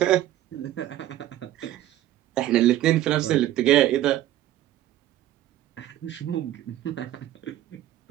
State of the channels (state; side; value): quieter; left; 13.4 dB